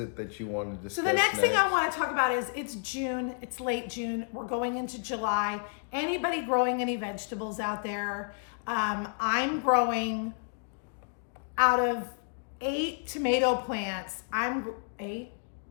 that you want to discuss? So the next thing I want to talk about is it's June. It's late June. We're going into July. Anybody growing any vegetables out there? I'm growing out of 8 tomato plants. I'm 8.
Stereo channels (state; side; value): silent; right; 57 dB below the other